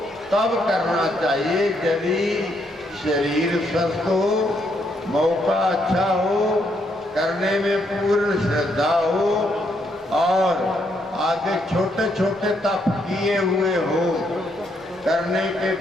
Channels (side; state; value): both; normal; correlation 0.75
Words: तब करना चाहिए यदि शरीर स्वस्थ हो, मौका अच्छा हो, करने में पूर्ण श्रद्धा हो और आगे छोटे छोटे तप किए हुए हो। करने के